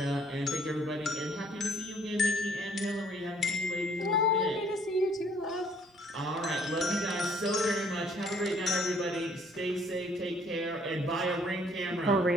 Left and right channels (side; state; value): both; normal; correlation 0.62